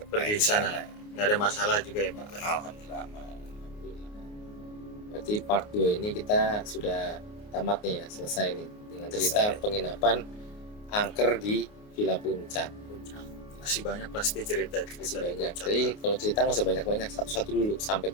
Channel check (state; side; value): late; right; 29 ms